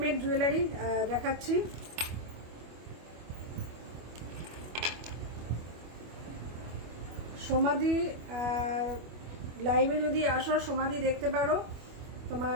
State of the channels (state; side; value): late; left; 25 ms